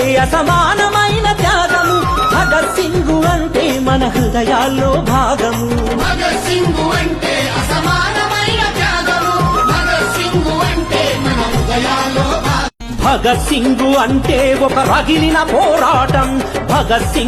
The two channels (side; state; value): both; identical; correlation 1.00